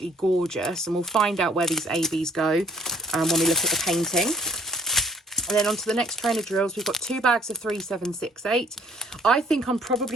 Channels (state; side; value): normal; both; correlation 0.61